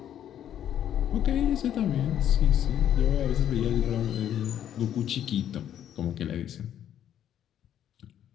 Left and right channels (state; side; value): quieter; right; 10.4 dB